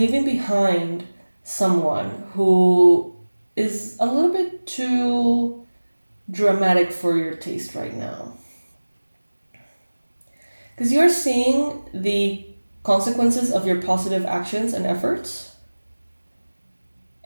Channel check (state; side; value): inverted; both; correlation -1.00